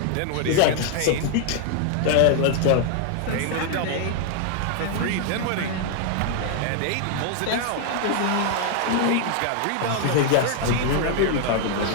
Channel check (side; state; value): both; different; correlation 0.00